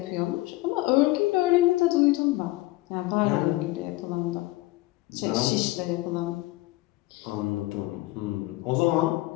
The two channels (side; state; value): right; quieter; 19.3 dB